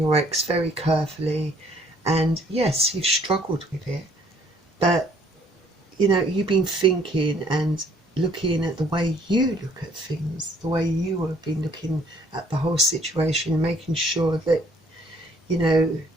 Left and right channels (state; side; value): normal; both; correlation 0.61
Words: ex very carefully, and yes, you've struggled with it, but you know, you've been thinking and looking at the way you look at things, the way you have been looking at the whole situation, making sure that, you know,